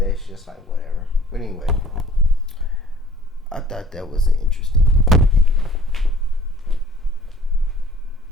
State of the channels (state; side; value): normal; both; correlation 0.53